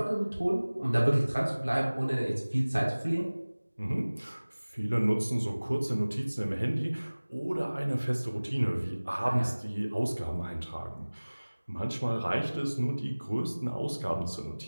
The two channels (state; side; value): inverted; both; correlation -1.00